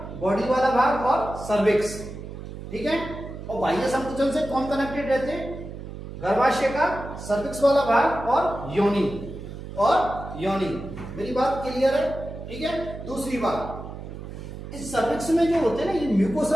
बॉडी वाला भाग और सर्विक्स। ठीक है, और बाह्य संकुचन से कौन कनेक्टेड रहते हैं, गर्भाशय का सर्विक्स वाला भाग और योनि, और योनि। मेरी बात क्लियर है। ठीक है, दूसरी बात, इस सर्विक्स में जो होते हैं ना, ये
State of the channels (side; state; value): right; noise; hum, 11 dB below the sound